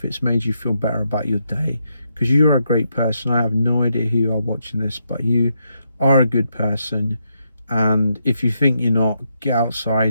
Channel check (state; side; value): inverted; both; correlation -0.80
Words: it's made you feel better about your day, because you're a great person. I have no idea who you are watching this, but you are a good person. And if you think you're not, get